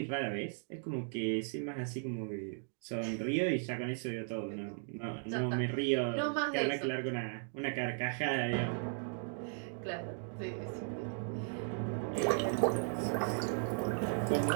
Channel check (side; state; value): left; silent; 53 dB below the other